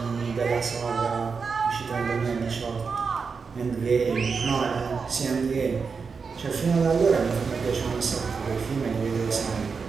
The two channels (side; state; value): left; quieter; 5.3 dB